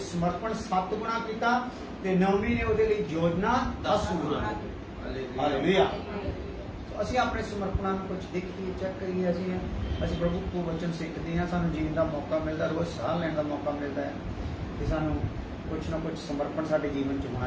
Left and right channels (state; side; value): identical; both; correlation 1.00